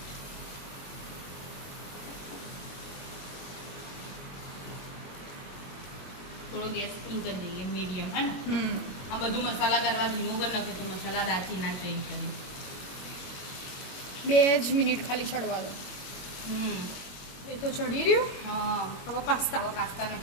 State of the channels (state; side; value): late; right; 21 ms